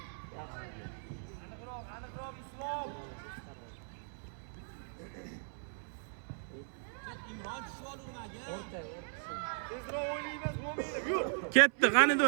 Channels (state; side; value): silent; left; 53 dB below the other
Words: Tezroq o'ynaymiz, Mo'minov. Yur. Ketdi, qani